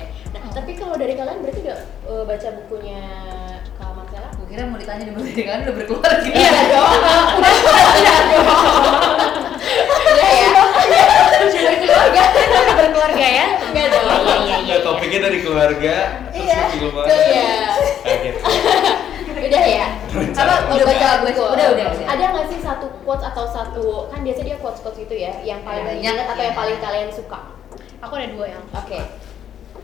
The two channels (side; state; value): right; quieter; 9.8 dB